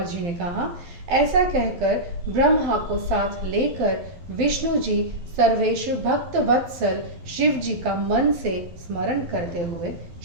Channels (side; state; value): left; late; 12 ms